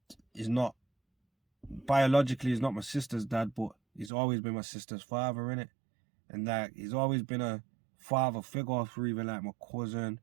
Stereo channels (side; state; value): left; drops out; at 4.1 s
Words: not, biologically he's not my sister's dad, but he's always been my sister's father, innit? And like, he's always been a father figure for even like my cousin,